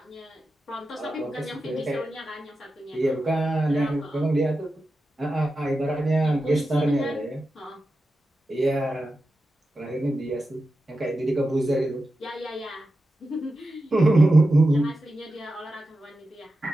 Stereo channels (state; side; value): normal; both; correlation 0.91